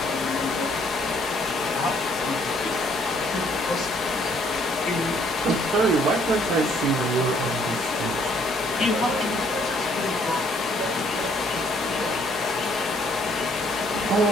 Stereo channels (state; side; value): normal; both; correlation 0.64